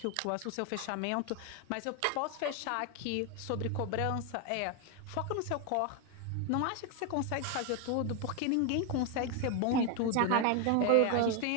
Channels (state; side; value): different; both; correlation 0.01